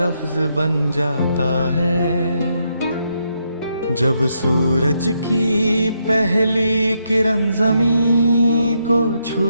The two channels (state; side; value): inverted; both; correlation -0.79